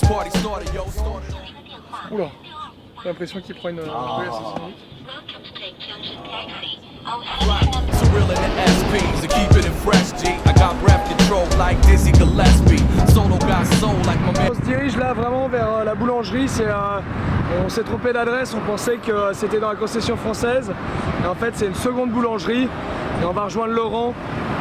party started, yo. Oula, j'ai l'impression qu'il prend une assassinée. So real in the SPs to keep it in fresh G. I got breath control like Dizzy Gillespie. Solo got soul like my man. On se dirige là vraiment vers la boulangerie. On s'est trompé d'adresse, on pensait que c'était dans la concession française. Et en fait c'est une seconde boulangerie. Et on va rejoindre Laurent,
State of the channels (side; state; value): both; identical; correlation 1.00